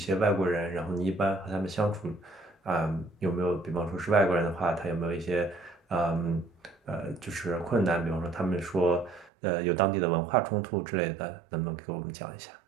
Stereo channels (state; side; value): drops out; left; at 9.3 s